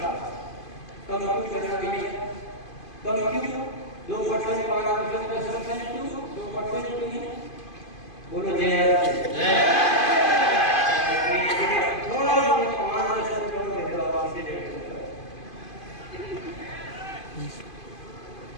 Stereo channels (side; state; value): right; late; 2.5 ms